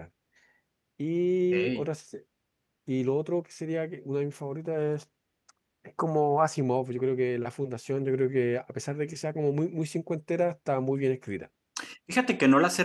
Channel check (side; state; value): both; identical; correlation 1.00